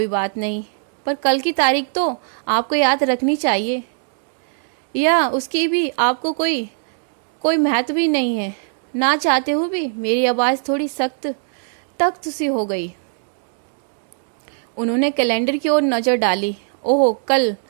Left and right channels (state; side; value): silent; left; digital silence